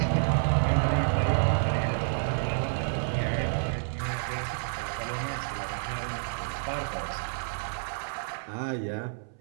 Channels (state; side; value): silent; left; 58 dB below the other